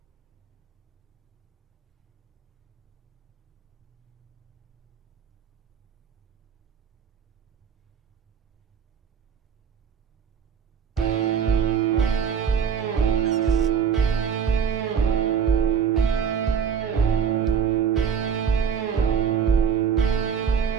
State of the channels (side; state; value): left; quieter; 7.1 dB